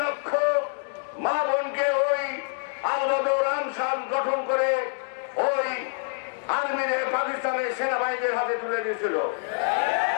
লক্ষ মা বোনকে ওই আল-বদর আনসার গঠন করে ওই আর্মিদের পাকিস্তানের সেনাবাহিনীর হাতে তুলে দিয়েছিল।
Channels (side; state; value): right; silent; 61 dB below the other